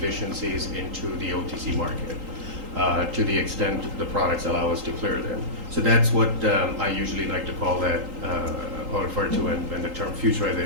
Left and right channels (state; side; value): late; left; 3.8 ms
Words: into the OTC market, to the extent the products allow us to clear them. So that's what I usually like to call that, or refer to when the term